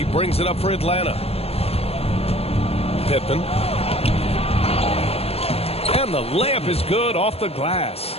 brings it up for Atlanta. Pippen. And the layup is good off the glass.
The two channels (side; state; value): right; late; 0.29 ms